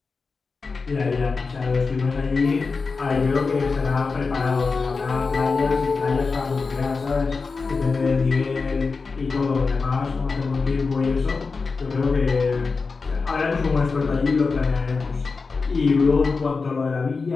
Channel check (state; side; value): quieter; right; 4.5 dB